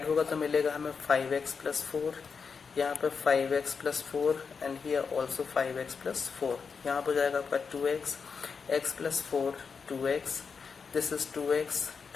होगा तो मिलेगा हमें 5x प्लस 4, यहाँ पे 5x plus 4 and here also 5x plus 4। यहाँ पर जाएगा आपका 2x x plus 4 2x, this is 2x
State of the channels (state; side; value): quieter; right; 5.6 dB